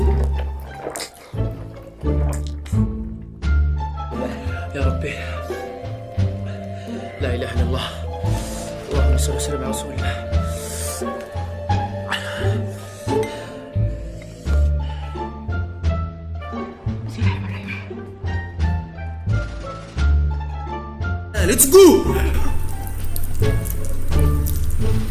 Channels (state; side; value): identical; both; correlation 1.00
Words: يا ربي لا إله إلا الله. اللهم صل وسلم على رسول الله. Let's go!